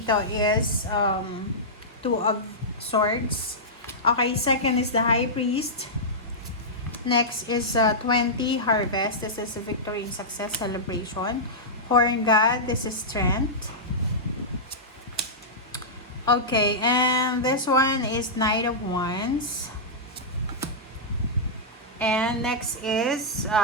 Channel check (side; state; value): both; normal; correlation -0.12